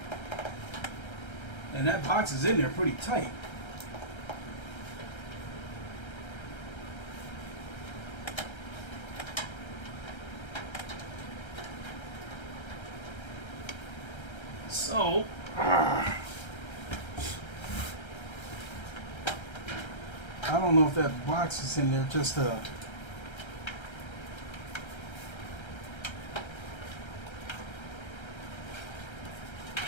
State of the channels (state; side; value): late; right; 1.3 ms